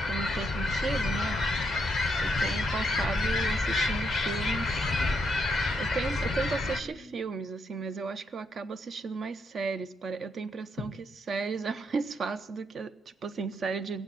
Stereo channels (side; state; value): both; normal; correlation 0.77